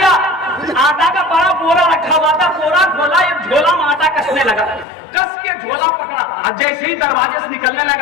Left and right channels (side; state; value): right; drops out; at 4.9 s